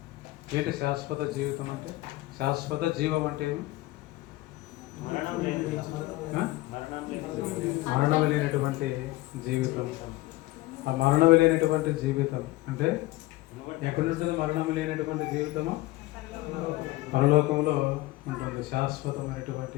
ఏంటి? శాశ్వత జీవితం అంటే, శాశ్వత జీవం అంటే మరణం లేనటువంటి జీవితం. ఆ మరణం లేనటువంటి జీవితం అంటే ఎక్కడ ఉంటుంది? మరణం లేనటువంటి జీవితము పరలోకంలో ఉంటుంది.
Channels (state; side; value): quieter; right; 18.3 dB